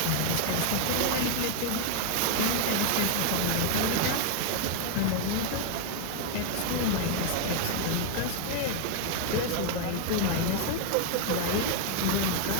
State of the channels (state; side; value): different; both; correlation 0.00